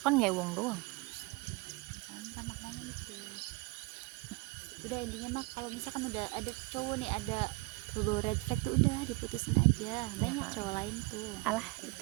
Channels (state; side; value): quieter; left; 24.4 dB